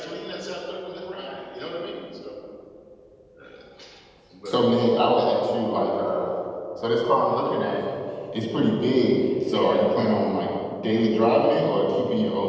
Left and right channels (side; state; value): both; identical; correlation 1.00